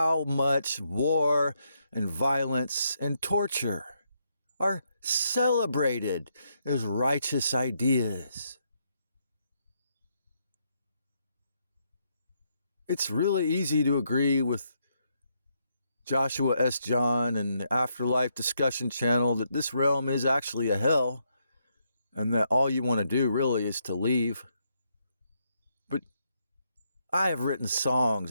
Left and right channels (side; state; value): both; inverted; correlation -0.78